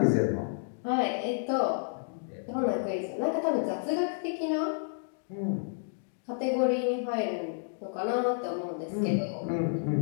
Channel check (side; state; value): right; silent; digital silence